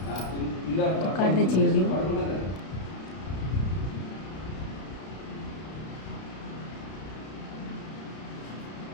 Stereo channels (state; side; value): late; right; 32 ms